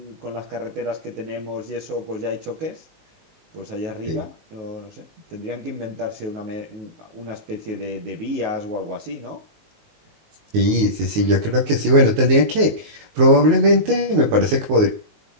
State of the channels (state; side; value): late; left; 19 ms